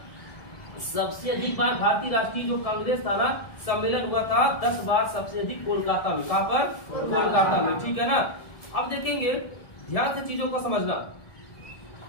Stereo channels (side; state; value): right; late; 1.7 ms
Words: सबसे अधिक बार भारतीय राष्ट्रीय जो कांग्रेस था ना सम्मेलन हुआ था 10 बार, सबसे अधिक कोलकाता में। कहां पर? कोलकाता में, ठीक है ना। अब देखेंगे, ध्यान से चीजों को समझना।